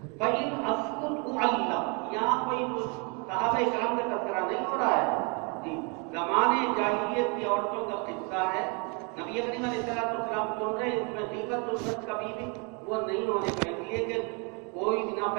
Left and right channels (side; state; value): left; quieter; 33.6 dB